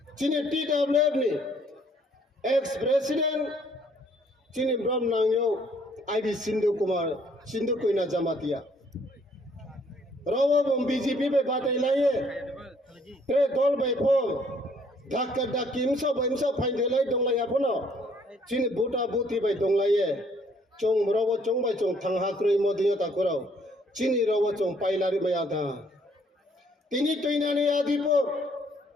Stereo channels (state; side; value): normal; both; correlation 0.64